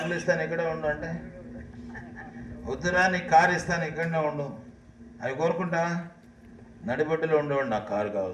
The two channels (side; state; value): both; identical; correlation 1.00